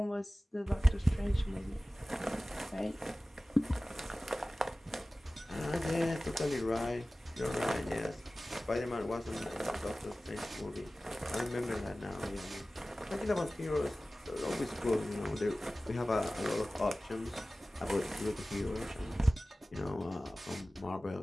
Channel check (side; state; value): both; normal; correlation 0.97